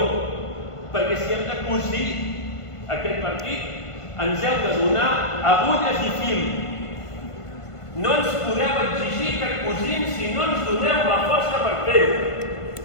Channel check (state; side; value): late; right; 1.5 ms